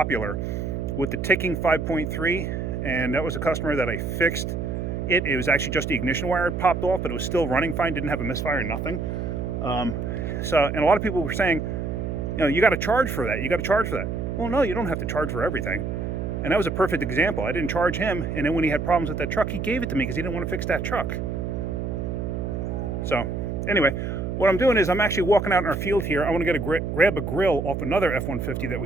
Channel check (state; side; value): noise; right; hum, 3 dB below the sound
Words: with the ticking 5.3, and that was a customer that I fixed. It was actually just the ignition wire had popped off, but it was still running fine, didn't have a misfire, nothing. And a lot of people were saying, you got to charge for that. You got to charge for that. Well, no, you don't have to charge for everything. And that was a perfect example. I didn't charge him, and then when he had problems with that truck, he gave it to me because he didn't want to fix that truck. So anyway, what I'm doing is I'm actually walking out in our field here. I want to get grab a grill off another F-150 that